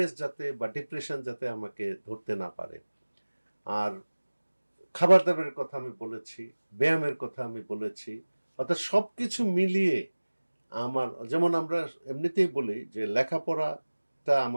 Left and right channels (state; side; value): inverted; both; correlation -1.00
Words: যাতে বা ডিপ্রেশন যাতে আমাকে ধরতে না পারে। আর খাবার দাবারের কথা আমি বলেছি, ব্যায়ামের কথা আমি বলেছি, অর্থাৎ সবকিছু মিলিয়ে আমার, যেমন আমরা এমনিতেই বলি যে লেখাপড়াটা